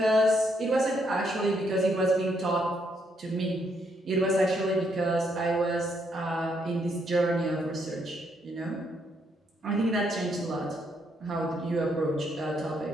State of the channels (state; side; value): normal; both; correlation 0.74